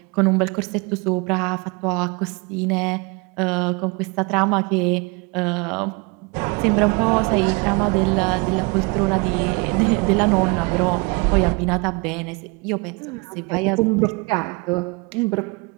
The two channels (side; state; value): left; quieter; 29.1 dB